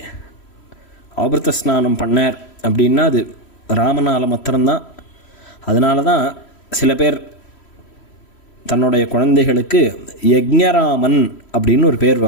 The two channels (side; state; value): right; late; 3.1 ms